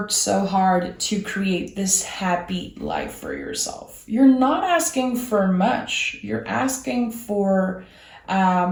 so hard to create this happy life for yourself. You're not asking for much. You're asking for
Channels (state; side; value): identical; both; correlation 1.00